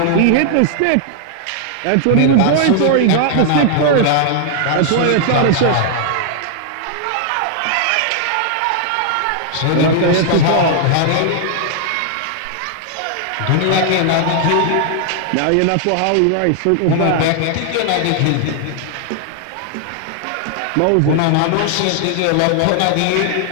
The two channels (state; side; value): different; both; correlation 0.00